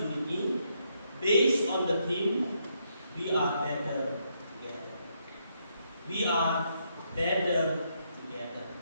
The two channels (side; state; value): both; inverted; correlation -0.76